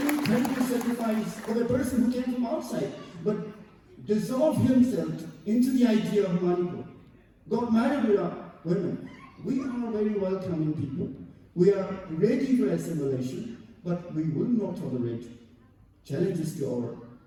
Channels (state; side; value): identical; both; correlation 1.00